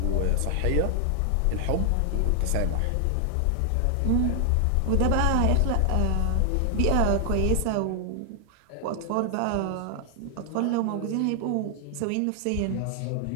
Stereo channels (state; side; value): different; both; correlation 0.00